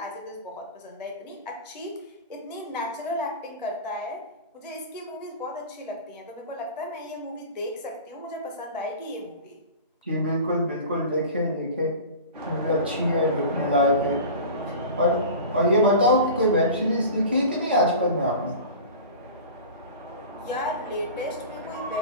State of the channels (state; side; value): inverted; both; correlation -0.35